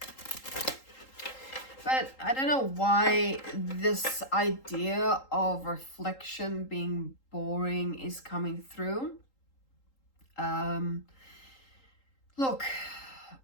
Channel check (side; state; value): right; late; 3.8 ms